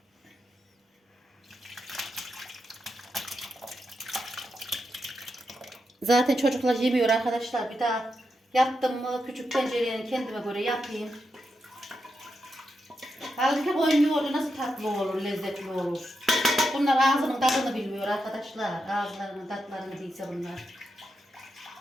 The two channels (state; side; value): normal; both; correlation 0.85